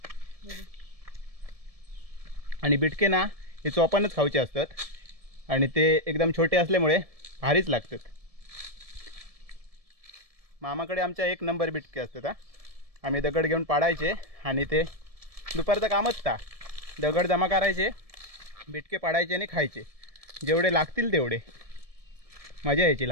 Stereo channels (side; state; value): left; late; 1.7 ms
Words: आणि बिटके ना हे चोपानच खाऊचे असतात आणि ते एकदम छोटे असल्यामुळे भारीच लागतात. मामाकडे आमच्या एक नंबर बिटके असतात हा. आम्ही दगड घेऊन पाडायचे आणि ते दुपारचं कामच ता दगड जमा करायचे बिटके पाडायचे आणि खायचे. जेवढे लागतील तेवढे. मजा यायची